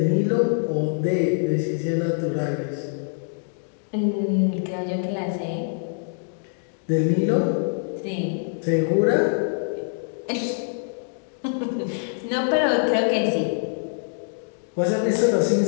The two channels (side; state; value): right; silent; digital silence